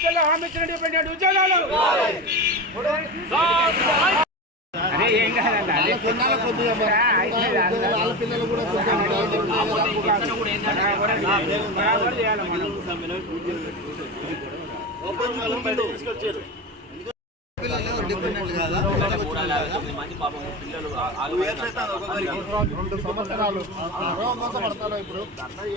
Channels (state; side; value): normal; both; correlation 0.23